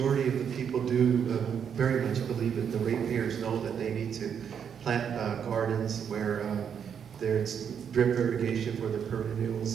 of the people do very much believe that the ratepayers know that they need to plant gardens where there's drip irrigation for their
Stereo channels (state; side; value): quieter; left; 7.7 dB